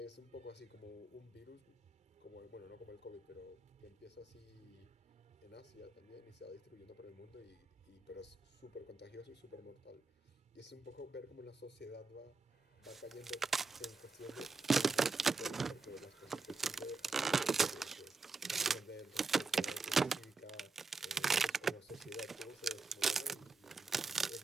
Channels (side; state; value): left; quieter; 4.1 dB